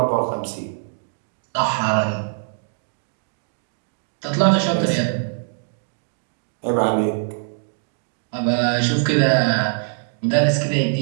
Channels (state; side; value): silent; left; digital silence